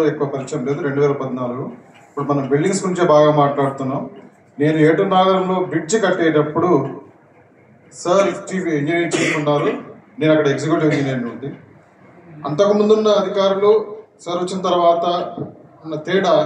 ఎక్కువ పరిచయం లేదు, 2014. ఇప్పుడు మనం బిల్డింగ్స్ గురించే బాగా మాట్లాడుతున్నాం. నేను ఏటూరు నాగరంలో బ్రిడ్జ్ కట్టేటప్పుడు సార్ ఇంజనీరింగ్ చీఫ్ ఉన్నారు, నేను అక్కడ ఎగ్జిక్యూటివ్ ఇంజనీర్ నుండి. అంతకుముందున్న అధికారులు సార్ వచ్చిన తర్వాత ఉన్న తేడా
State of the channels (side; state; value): both; identical; correlation 1.00